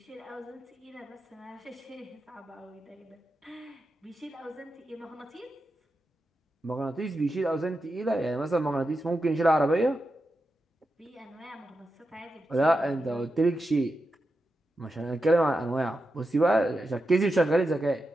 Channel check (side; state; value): both; normal; correlation 0.89